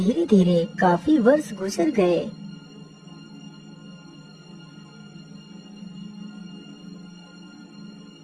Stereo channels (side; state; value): both; identical; correlation 1.00